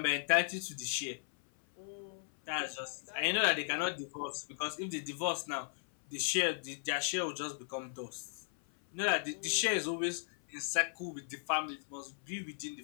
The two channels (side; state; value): right; silent; 53 dB below the other